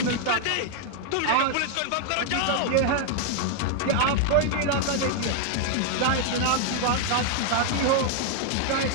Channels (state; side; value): different; both; correlation 0.00